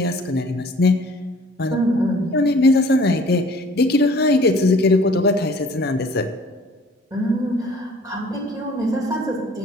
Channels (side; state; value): both; normal; correlation 0.52